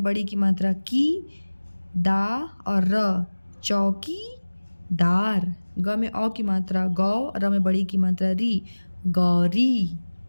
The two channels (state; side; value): inverted; both; correlation -1.00